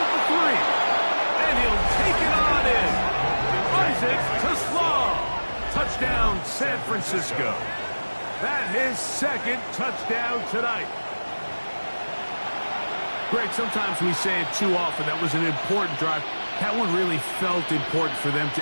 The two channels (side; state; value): both; inverted; correlation -1.00